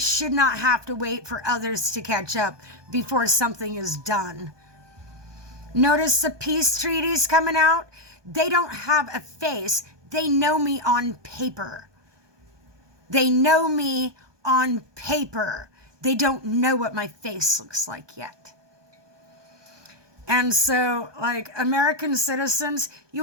not have to wait for others to catch up before something is done. Notice the peace treaties coming out? They don't have a face. They know me on paper. They know me on paper. They don't know what my face looks like yet. And so, American citizens, you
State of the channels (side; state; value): left; late; 1.2 ms